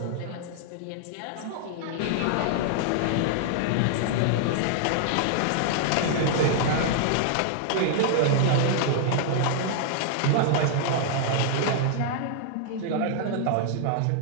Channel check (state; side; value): different; both; correlation -0.01